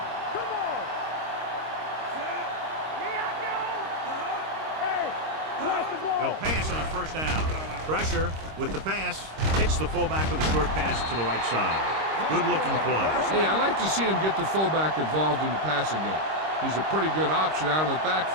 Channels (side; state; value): left; late; 26 ms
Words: They'll pass on 1st down. Pressure with the pass. Hits the fullback with a short pass to the right side. Good-looking play. Hey, I like to see him get the fullback involved in the passing game. He's a pretty good option out of the